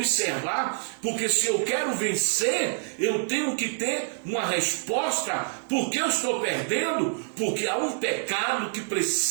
porque se eu quero vencer, eu tenho que ter uma resposta. Por que eu estou perdendo? Porque há um pecado que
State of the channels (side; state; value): left; silent; 60 dB below the other